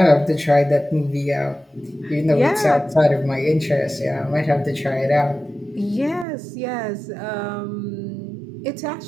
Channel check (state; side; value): drops out; left; at 6.2 s